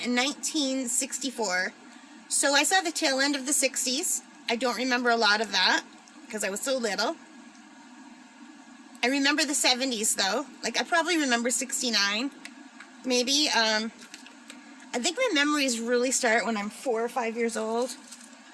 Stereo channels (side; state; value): both; identical; correlation 1.00